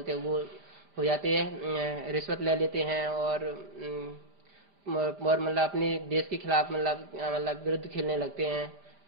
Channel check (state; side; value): late; left; 5.0 ms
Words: हैं वो हो जाते हैं, रिश्वत ले लेते हैं और मतलब अपने देश के खिलाफ मतलब विरुद्ध खेलने लगते हैं